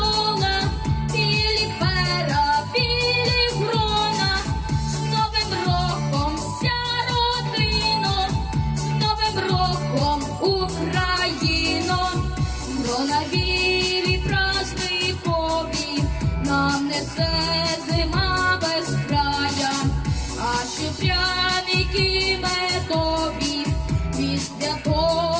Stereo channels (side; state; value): both; identical; correlation 1.00